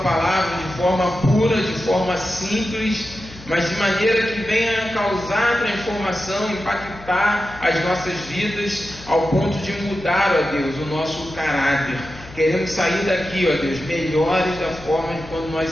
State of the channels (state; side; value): noise; left; hum, 18 dB below the sound